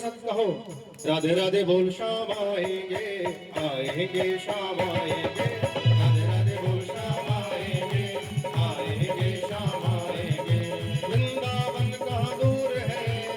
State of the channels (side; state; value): both; identical; correlation 1.00